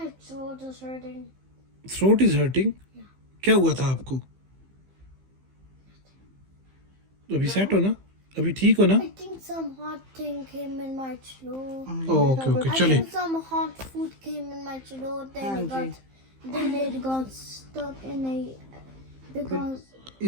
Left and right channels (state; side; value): late; left; 15 ms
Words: throat is hurting. Throat is hurting. क्या हुआ था आपको? अभी सेट हो ना, अभी ठीक हो ना? I think some hot thing came in my throat. Okay okay, I चले। think some hot food came in my throat. Then it got stuck in a because